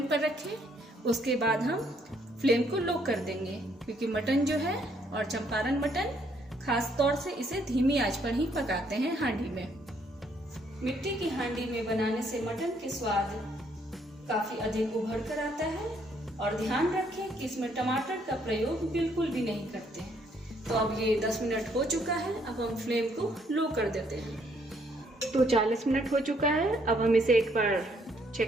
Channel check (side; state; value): both; normal; correlation 0.69